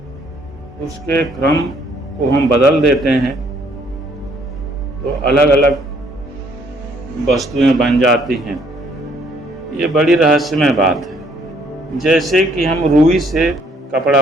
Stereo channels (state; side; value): normal; both; correlation 0.65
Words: उसके क्रम को हम बदल देते हैं तो अलग अलग वस्तुएं बन जाती हैं। ये बड़ी रहस्यमय बात है। जैसे कि हम रुई से कपड़ा